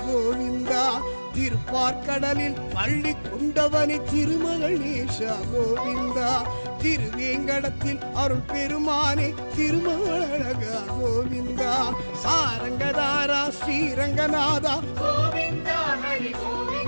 கோவிந்தா திருப்பாற்கடலில் பள்ளி கொண்டவனை திருமகணேஷா கோவிந்தா திருவேங்கடத்தில் அருள் பெருமானே திருமாலழகா கோவிந்தா சாரங்கதாரா ஸ்ரீரங்கநாதா கோவிந்தா ஹரி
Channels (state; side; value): inverted; both; correlation -1.00